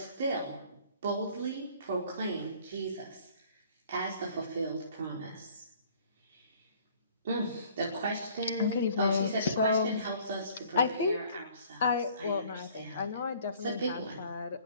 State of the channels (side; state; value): both; inverted; correlation -0.55